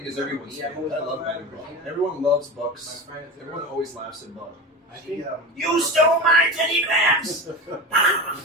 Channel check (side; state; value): both; normal; correlation 0.26